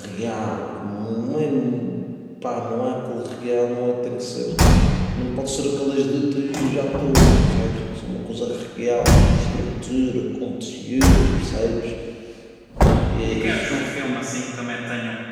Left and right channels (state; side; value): identical; both; correlation 1.00